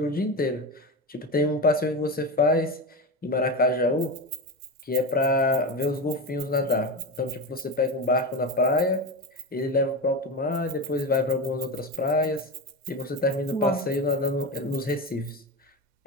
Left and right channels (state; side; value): normal; both; correlation 0.20